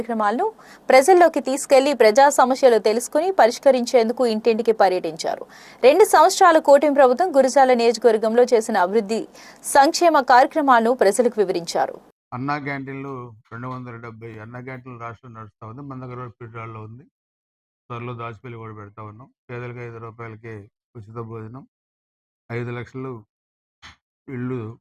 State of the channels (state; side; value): identical; both; correlation 1.00